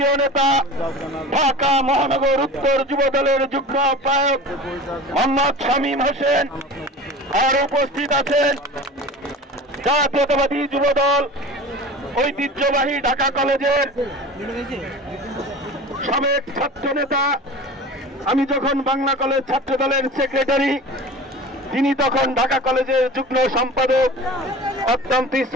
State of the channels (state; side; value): normal; both; correlation 0.36